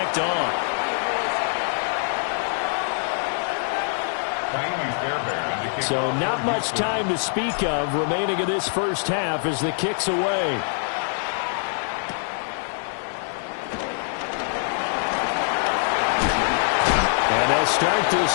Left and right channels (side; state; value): right; silent; 56 dB below the other